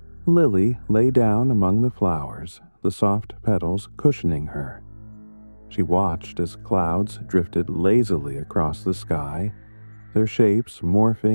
Lily lay down among the flowers, the soft petals cushioning her. She watched as clouds drifted lazily across the sky, their shapes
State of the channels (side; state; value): both; inverted; correlation -1.00